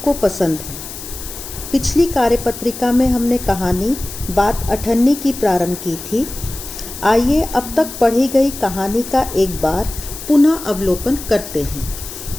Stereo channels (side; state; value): left; noise; hiss, 11 dB below the sound